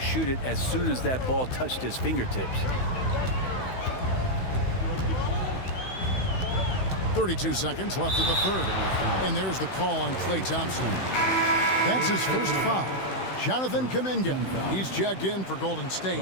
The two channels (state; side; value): late; right; 16 ms